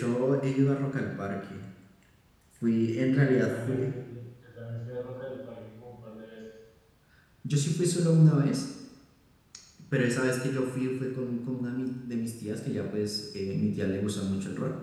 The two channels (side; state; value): both; identical; correlation 1.00